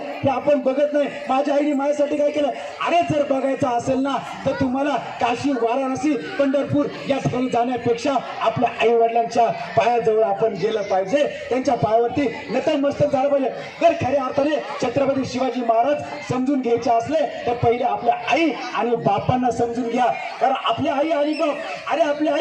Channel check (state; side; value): identical; both; correlation 1.00